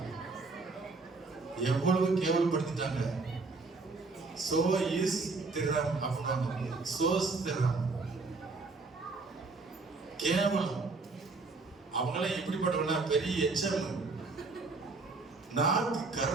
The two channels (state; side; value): quieter; left; 3.8 dB